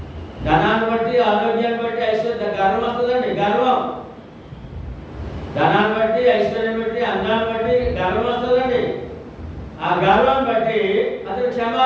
ధనాన్ని బట్టి ఆరోగ్యాన్ని బట్టి ఐశ్వర్యం గర్వం వస్తుందండి. గర్వం, ధనాన్ని బట్టి ఐశ్వర్యం బట్టి అందాన్ని బట్టి గర్వం వస్తుందండి. ఆ గర్వం బట్టి అతను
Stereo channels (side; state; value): both; identical; correlation 1.00